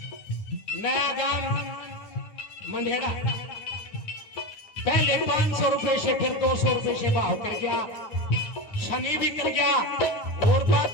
नया गांव मंढेरा पहले 500 रुपए से फिर 200 रुपए से भाव कर गया, शनि भी कर गया और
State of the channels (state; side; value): late; right; 9.7 ms